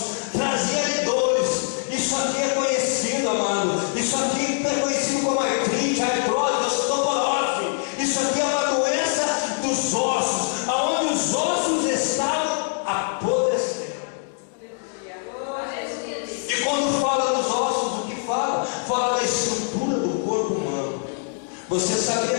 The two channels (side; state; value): right; silent; 63 dB below the other